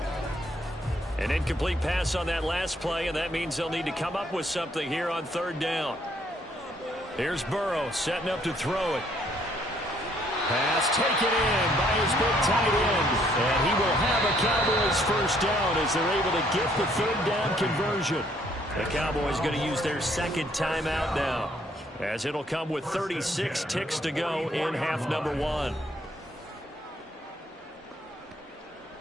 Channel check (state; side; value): normal; both; correlation 0.67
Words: An incomplete pass on that last play, and that means they'll need to come up with something here on 3rd down. Here's Burrow setting up to throw it. Pass taken in by his big tight end. And he will have a Cowboys 1st down as they're able to get the 3rd down conversion. The Cowboys going to use their 2nd timeout now, as it'll come with 36 ticks to go in half number 1.